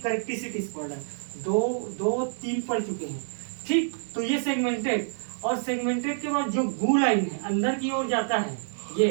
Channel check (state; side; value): silent; left; 60 dB below the other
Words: पढ़ रहे हैं, दो तीन पढ़ चुके हैं। ठीक, तो ये सेगमेंटेड, और सेगमेंटेड के बाद जो गू लाइन है अंदर की ओर जाता है,